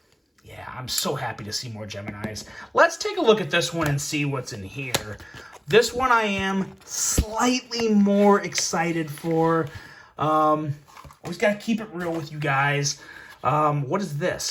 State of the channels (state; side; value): identical; both; correlation 1.00